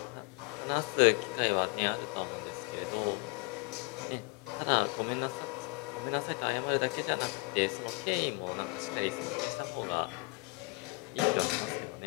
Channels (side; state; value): right; quieter; 28.6 dB